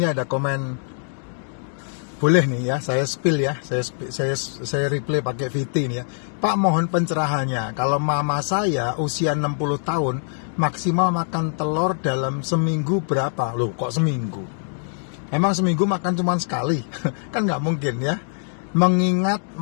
ada komen, boleh nih ya, saya spill ya, saya replay pakai VT nih ya. Pak, mohon pencerahannya. Kalau mama saya usia 60 tahun, maksimal makan telur dalam seminggu berapa? Loh, kok seminggu? Emang seminggu makan cuma sekali? Kan nggak mungkin ya. Mengingat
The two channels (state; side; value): silent; right; 63 dB below the other